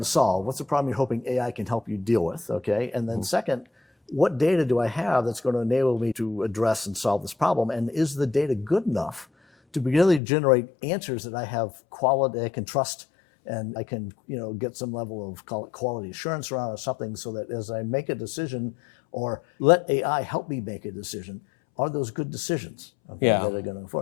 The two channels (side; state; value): right; drops out; at 10.2 s